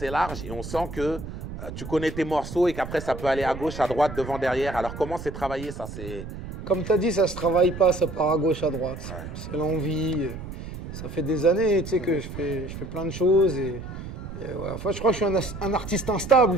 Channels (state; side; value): noise; right; rumble, 10 dB below the sound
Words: large et on sent que tu connais tes morceaux et qu'après ça peut aller à gauche, à droite, devant, derrière. Alors comment c'est travaillé ça? Comme tu as dit, ça se travaille pas, ça part à gauche, à droite. Ouais. C'est l'envie. Ça fait des années tu sais, que je fais plein de choses. Et ouais, enfin, je crois que je suis un artiste